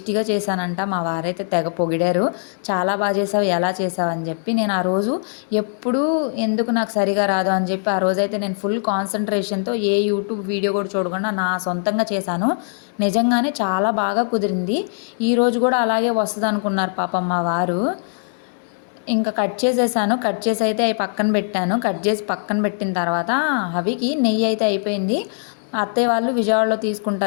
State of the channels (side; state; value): right; silent; digital silence